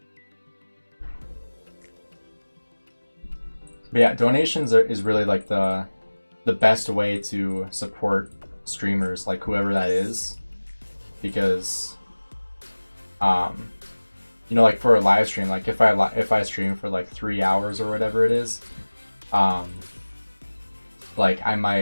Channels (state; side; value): inverted; both; correlation -1.00